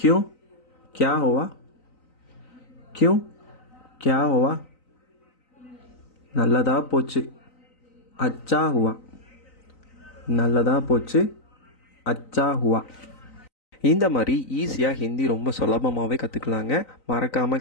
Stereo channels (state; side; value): late; right; 3.9 ms